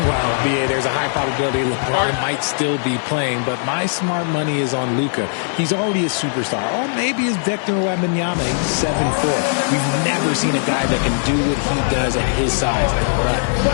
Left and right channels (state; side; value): silent; right; digital silence